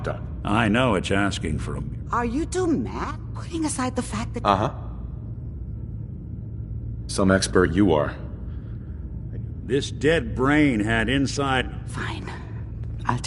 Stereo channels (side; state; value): both; identical; correlation 1.00